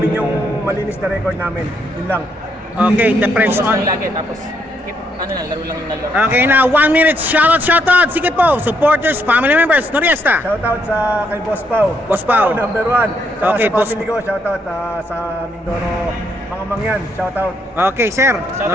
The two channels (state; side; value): normal; both; correlation 0.74